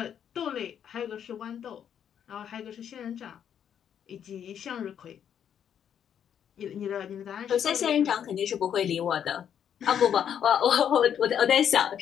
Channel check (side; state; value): right; quieter; 8.9 dB